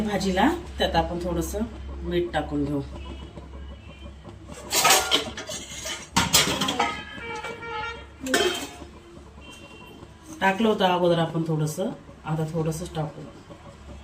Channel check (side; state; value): both; identical; correlation 1.00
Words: भाजीला, त्यात आपण थोडंसं मीठ टाकून घेऊ। टाकलं होतं अगोदर आपण थोडंसं, आता थोडंसंच टाकू।